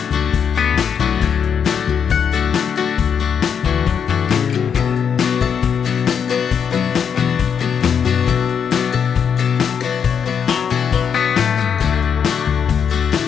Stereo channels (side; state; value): right; quieter; 7.3 dB